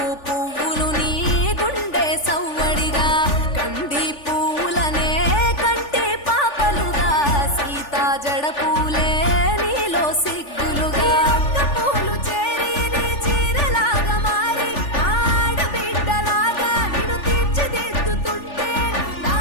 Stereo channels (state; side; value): late; right; 3.4 ms